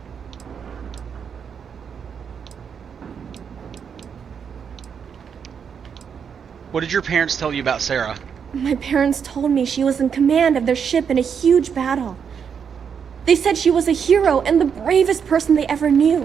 What did your parents tell you about Sarah? My parents told me she was in command of their ship in a huge battle. They said she was a hero and the bravest person they ever knew.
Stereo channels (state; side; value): quieter; left; 7.1 dB